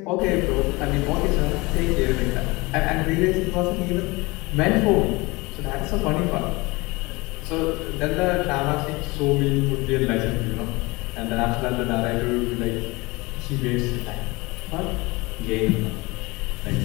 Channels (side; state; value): right; quieter; 23.8 dB